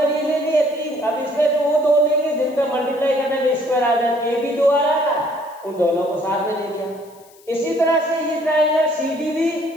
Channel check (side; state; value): left; noise; hiss, 27 dB below the sound